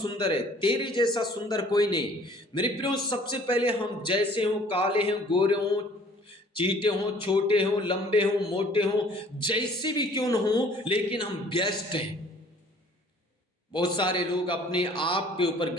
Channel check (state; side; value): normal; both; correlation 0.54